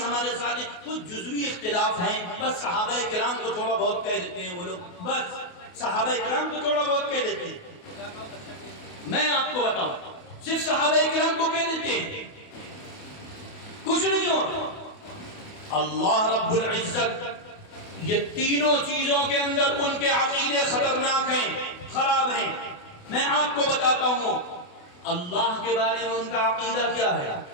ہمارے ساتھ ہیں، کچھ جزوی اختلاف ہیں، بس صحابہ کرام کو تھوڑا بہت کہہ دیتے ہیں وہ لوگ، بس صحابہ کرام کو تھوڑا بہت کہہ دیتے ہیں۔ میں آپ کو بتاؤں، صرف صحابہ کرام کو کہہ دیتے ہیں، کچھ نہیں ہو۔ اللہ رب العزت یہ تینوں چیزوں کے اندر ان کے عقیدے خطرناک ہیں، خراب ہیں۔ میں آپ کو بتاتا ہوں اللہ کے بارے میں ان کا عقیدہ کیا ہے،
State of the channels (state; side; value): late; right; 28 ms